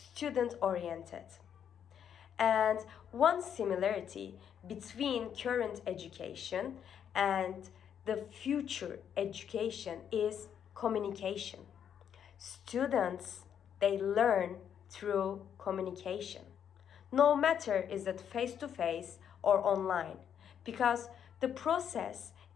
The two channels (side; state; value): right; quieter; 8.7 dB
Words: And one similarity between current education and the future education is communication. Students, they learn through communication. No matter is it face-to-face or online, because the process